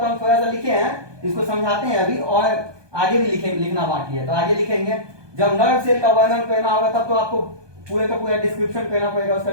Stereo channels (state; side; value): late; left; 1.2 ms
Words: हम थोड़ा सा लिखे हैं, इसको समझाते हैं अभी, और आगे भी लिखना बाकी है, तो आगे लिखेंगे। जब नर्व सेल का वर्णन करना होगा तब तो आपको पूरे का पूरा डिस्क्रिप्शन करना पड़ेगा, उसका